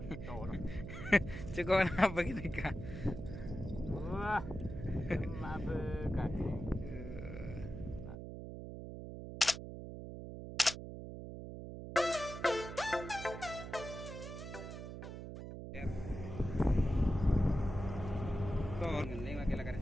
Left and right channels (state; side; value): noise; right; hum, 9 dB below the sound